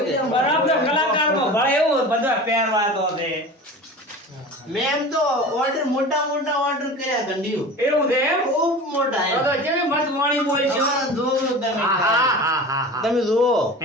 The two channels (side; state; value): both; normal; correlation 0.34